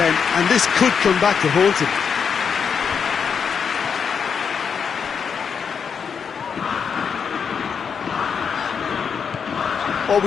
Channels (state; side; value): quieter; right; 6.6 dB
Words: and this could come back to haunt him. Well,